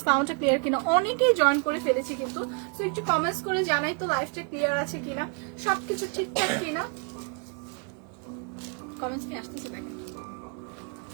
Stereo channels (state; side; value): quieter; left; 38.3 dB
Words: সাউন্ডটা ক্লিয়ার কিনা। অনেকেই জয়েন করে ফেলেছি কিন্তু, সো একটু কমেন্টস করে জানাই তো লাইভটা ক্লিয়ার আছে কিনা, সবকিছু ঠিকঠাক কিনা। কমেন্টস কি আসতেছে দেখেন।